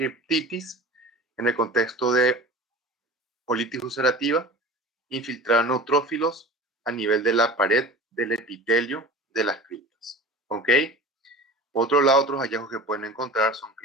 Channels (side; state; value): both; normal; correlation 0.36